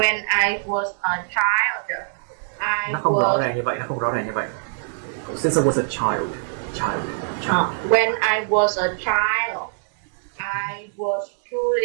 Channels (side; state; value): left; silent; digital silence